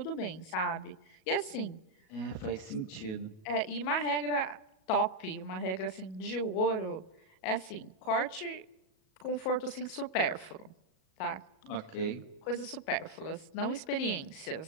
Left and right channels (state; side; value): late; right; 37 ms